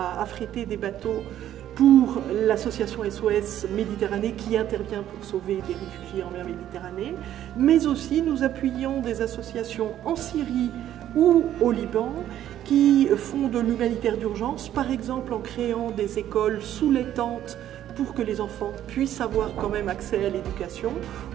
affréter des bateaux pour l'association SOS Méditerranée qui intervient pour sauver des réfugiés en mer Méditerranée, mais aussi nous appuyons des associations en Syrie ou au Liban qui font de l'humanitaire d'urgence, par exemple en créant des écoles sous les tentes pour que les enfants puissent avoir quand même accès à l'éducation,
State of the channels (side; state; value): left; quieter; 11.7 dB